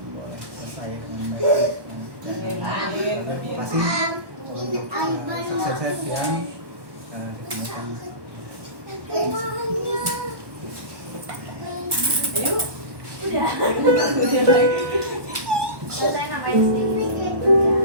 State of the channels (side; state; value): left; late; 1.2 ms